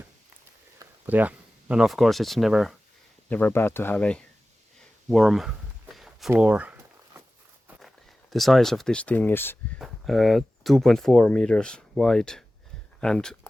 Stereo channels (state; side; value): normal; both; correlation 0.96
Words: But yeah, and of course it's never bad to have a warm floor. The size of this thing is 2.4 meters wide and